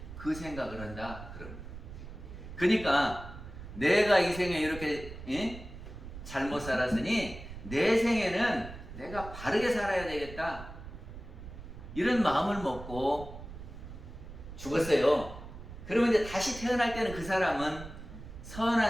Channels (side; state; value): right; noise; rumble, 12 dB below the sound